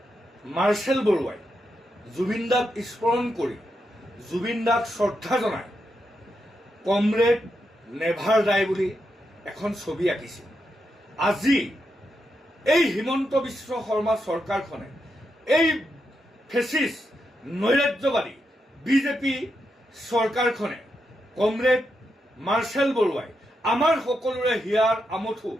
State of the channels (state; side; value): normal; both; correlation 0.84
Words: মাৰ্চেল বৰুৱাই জুবিনদাক স্মৰণ কৰি জুবিনদাক শ্ৰদ্ধা জনাই কমৰেড নেভাৰ ডাই বুলি এখন ছবি আঁকিছিল। আজি এই হিমন্ত বিশ্ব শৰ্মা চৰকাৰখনে এই ফেচিষ্ট নৈৰাজ্যবাদী বিজেপি চৰকাৰখনে কমৰেড মাৰ্চেল বৰুৱাই আমাৰ সকলোৰে হিয়াৰ আমঠু